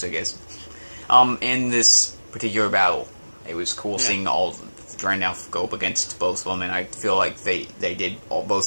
I guess. In this particular battle, it was cool seeing all trying now go up against both of them, and I feel like they did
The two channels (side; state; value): both; inverted; correlation -1.00